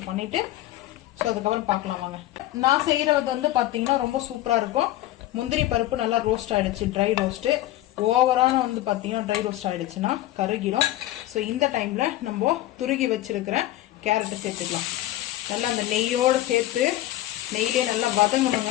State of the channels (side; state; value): right; quieter; 15.3 dB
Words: பண்ணிட்டு ஸோ அதுக்கப்புறம் பார்க்கலாம் வாங்க. நான் செய்யறது வந்து பார்த்தீங்கன்னா ரொம்ப சூப்பரா இருக்கும். முந்திரி பருப்பு நல்லா ரோஸ்ட் ஆயிடுச்சு, ட்ரை ரோஸ்ட்டு. ஓவரான வந்து பார்த்தீங்கன்னா ட்ரை ரோஸ்ட் ஆயிடுச்சுன்னா கருகிடும். ஸோ இந்த டைம்ல நம்ம துருகி வச்சிருக்கிற கேரட்டை சேர்த்துக்கலாம். நல்லா அந்த நெய்யோடு சேர்த்து நெய்யிலே நல்லா